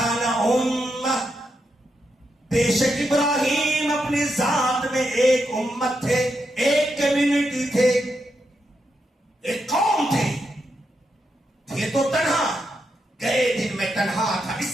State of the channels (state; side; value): normal; both; correlation 0.83